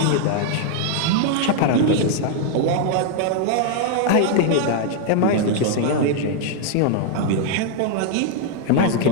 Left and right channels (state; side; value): different; both; correlation 0.00